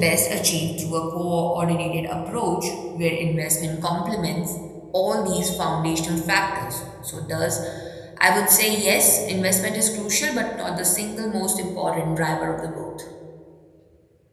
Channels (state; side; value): identical; both; correlation 1.00